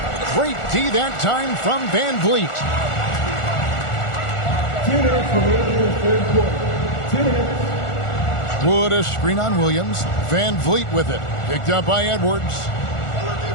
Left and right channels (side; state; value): right; late; 1.4 ms